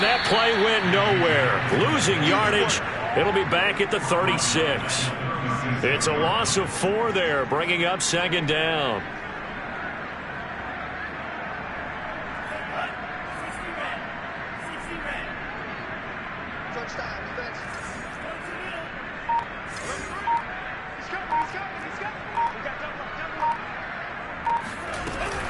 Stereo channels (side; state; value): both; identical; correlation 1.00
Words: that play went nowhere. Losing yardage, it'll be back at the 36. It's a loss of 4 there, bringing up second down.